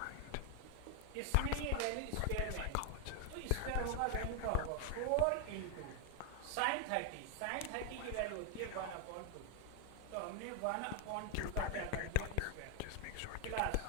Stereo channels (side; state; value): both; different; correlation 0.00